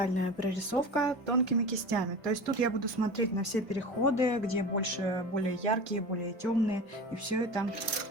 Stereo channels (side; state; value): both; normal; correlation 0.32